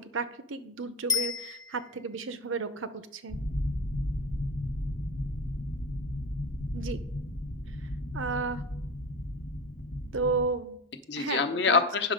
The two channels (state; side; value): normal; both; correlation 0.20